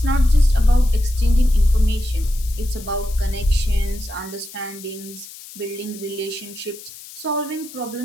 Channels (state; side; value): noise; left; hiss, 16 dB below the sound